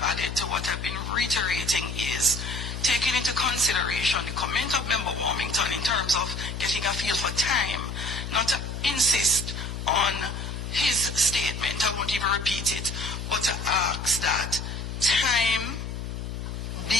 added to what I've been reiterating is taking into consideration the comment of Member Warmington in terms of getting a feel for time, not to insist on his statement, I won't even repeat it, but to ask that time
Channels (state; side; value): noise; left; hum, 6 dB below the sound